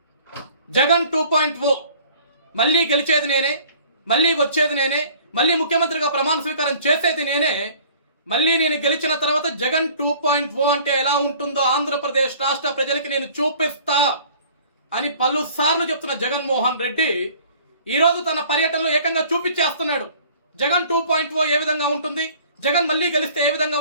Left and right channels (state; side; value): inverted; both; correlation -0.51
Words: జగన్ 2.0 మళ్ళీ గెలిచేది నేనే, మళ్ళీ వచ్చేది నేనే, మళ్ళీ ముఖ్యమంత్రిగా ప్రమాణ స్వీకారం చేసేది నేనే, మళ్ళీ నేను గెలిచిన తర్వాత జగన్ 2.0 అంటే ఎలా ఉంటుందో ఆంధ్రప్రదేశ్ రాష్ట్ర ప్రజలకి నేను చూపిస్తా అని పలుసార్లు చెప్తున్న జగన్మోహన్ రెడ్డి ఈరోజు తన పర్యటనలో ఏకంగా చూపించేస్తున్నాడు. జగన్ 2.0 ఏ విధంగా ఉంటుంది, జగన్ మళ్ళీ గెలిస్తే ఏ విధంగా